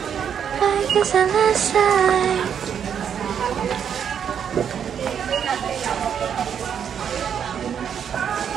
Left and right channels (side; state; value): left; quieter; 8.1 dB